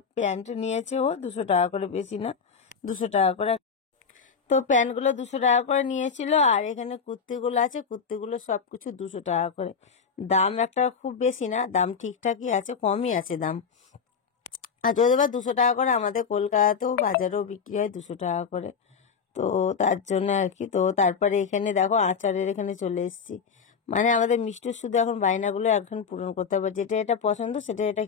প্যান্ট নিয়েছে ও 200 টাকা করে, বেশি না, 200 টাকা করে। তো প্যান্টগুলো 200 টাকা করে নিয়েছিল। আর এখানে কুর্তিগুলো আছে, কুর্তিগুলো সবকিছু 200 টাকা করে। দাম একটা খুব বেশি না, দাম ঠিকঠাকই আছে, কমই আছে দাম। আর যদি বা 200 টাকা করে, আমাদের কলকাতাতেও বাজারেও বিক্রি হয় 200 টাকা করে। তো তার জন্য আর কি। তো তারপরে এখানে দেখো আচারের এখানে চলে এসেছি। মানে আমাদের মিষ্টির শুধু এখন বায়নাগুলো এখন পূরণ করতে হবে, যেটা এটা পছন্দ সেটা এটা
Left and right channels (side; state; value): right; quieter; 6.0 dB